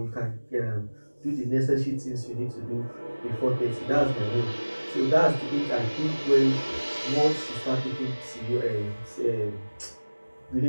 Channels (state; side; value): inverted; both; correlation -1.00